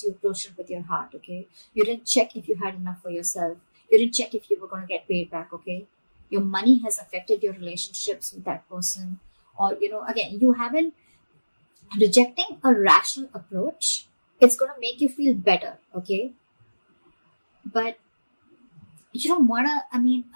You approached it with your heart, okay? You didn't check if you had enough for yourself. You didn't check if you were going to get paid back, okay? Your money has affected your relationships with that person. Or, again, you haven't rejecting a rational approach. It's going to make you feel better, okay? But you don't want to,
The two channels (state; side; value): inverted; both; correlation -1.00